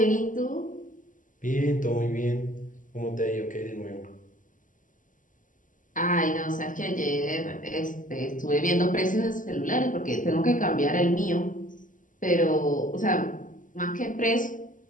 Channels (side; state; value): right; late; 0.38 ms